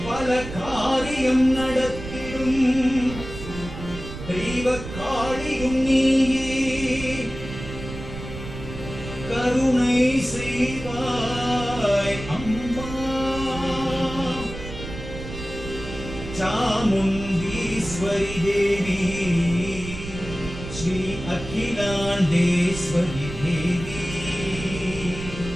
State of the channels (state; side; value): noise; right; rumble, 10 dB below the sound